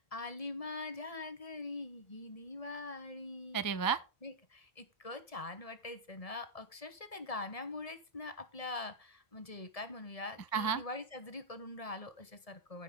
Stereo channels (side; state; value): right; late; 1.7 ms